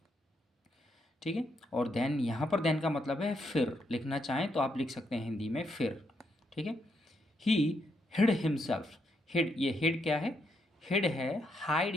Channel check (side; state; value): both; normal; correlation 0.78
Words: ठीक है, और देन, यहाँ पर देन का मतलब है फिर। लिखना चाहें तो आप लिख सकते हैं हिंदी में फिर। ठीक है, ही हिड हिमसेल्फ। हिड, ये हिड क्या है? हिड है